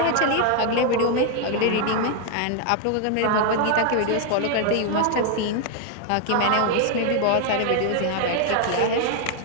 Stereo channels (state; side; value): different; both; correlation 0.00